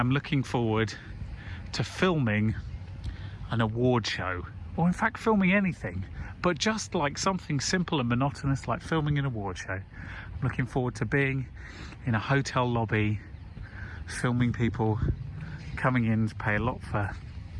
looking forward to filming an award show, or in fact filming anything, but just like something simple and monotonous like filming an award show. I'm looking forward to being in a hotel lobby, filming people coming in to pay a lot for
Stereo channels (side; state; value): both; identical; correlation 1.00